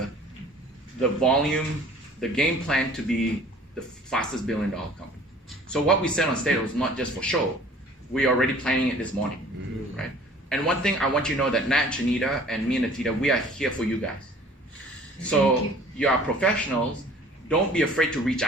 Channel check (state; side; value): normal; both; correlation 0.50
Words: volume, the game plan to be the fastest $1 billion company. So what we said on stage was not just for show. We are already planning it this morning, right? And one thing I want you to know that Nat, Janita, and me and Natita, we are here for you guys. So you are professionals. Don't be afraid to reach